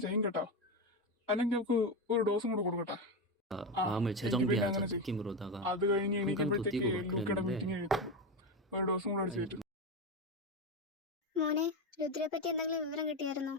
ചെയ്യും കേട്ടോ. അല്ലെങ്കിൽ നമുക്ക് ഒരു ഡോസും കൂടെ കൊടുക്കട്ടെ. 마음을 재정비하자 느낌으로다가 അത് കഴിഞ്ഞ് 한강도 എണീക്കുമ്പോഴത്തേക്ക് 뛰고 막 ലൂക്കയുടെ 그랬는데 മീറ്റിംഗ് എഴുതും. ഒരു ഡോസും കൂടെ അടിച്ചിട്ട്. മോനെ, രുദ്രയെ പറ്റി എന്തെങ്കിലും വിവരം കിട്ടിയായിരുന്നോ?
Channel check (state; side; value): normal; both; correlation 0.15